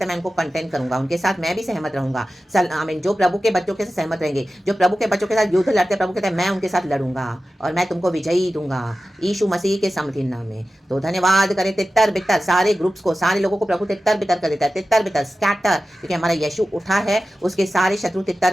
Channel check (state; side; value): normal; both; correlation 0.94